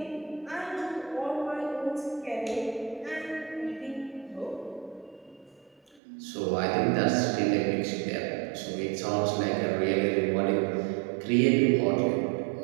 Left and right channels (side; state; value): left; drops out; at 6.0 s